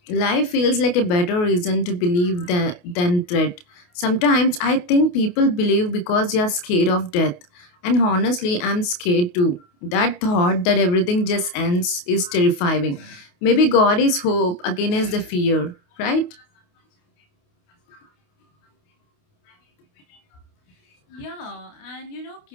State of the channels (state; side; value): late; right; 28 ms